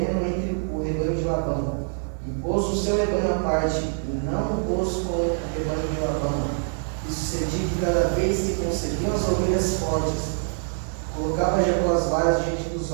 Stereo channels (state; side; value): silent; left; 60 dB below the other